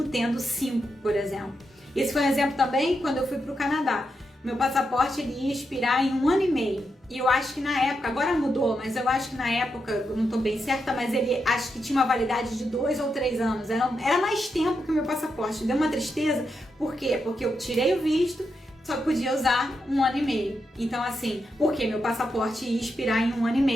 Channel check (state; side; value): normal; both; correlation 0.84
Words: tendo 5, por exemplo. Esse foi um exemplo também quando eu fui para o Canadá. Meu passaporte ele ia expirar em 1 ano e meio. E eu acho que na época, agora mudou, mas eu acho que na época, eu não estou bem certa, mas ele acho que tinha uma validade de 2 ou 3 anos. Era mais tempo que o meu passaporte. Deu uma tristeza. Por quê? Porque eu tirei o visto, só podia usar 1 ano e meio. Então, assim, porque meu passaporte ia expirar em 1 ano e